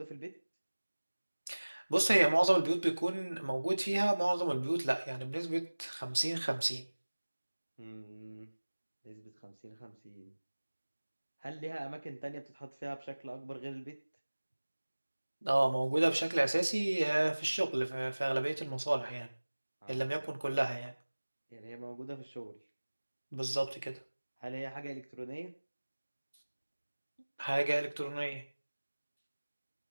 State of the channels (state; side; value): inverted; both; correlation -1.00